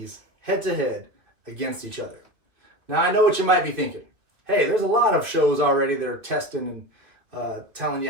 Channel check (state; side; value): late; left; 2.3 ms